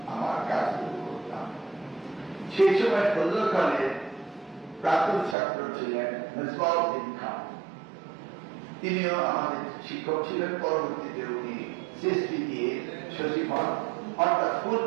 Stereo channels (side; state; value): left; drops out; at 5.4 s